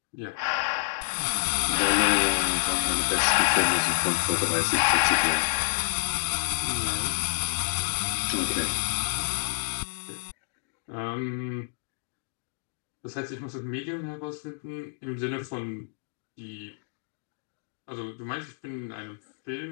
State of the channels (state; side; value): silent; right; digital silence